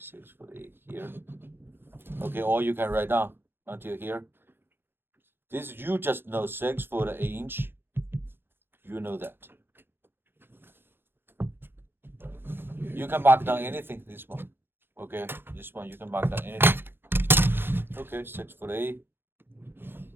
foot 8 here. Okay, or you can write down until here. This you just know 6 foot 8 inch. You know that. You can mark down anything. This one. Okay, this one you can mark down anything. Okay, 6 foot 8.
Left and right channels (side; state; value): left; late; 0.10 ms